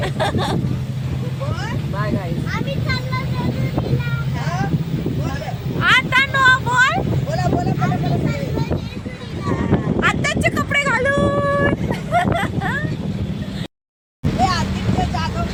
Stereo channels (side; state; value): both; identical; correlation 1.00